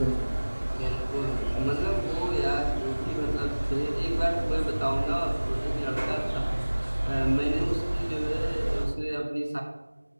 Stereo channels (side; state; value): both; inverted; correlation -1.00